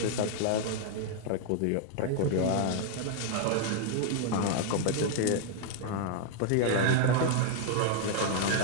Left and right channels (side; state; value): both; different; correlation 0.00